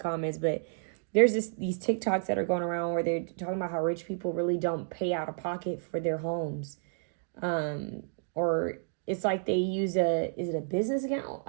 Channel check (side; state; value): left; silent; digital silence